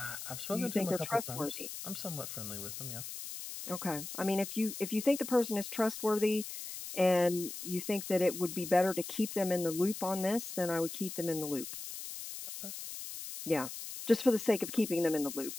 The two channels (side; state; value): left; noise; hiss, 9 dB below the sound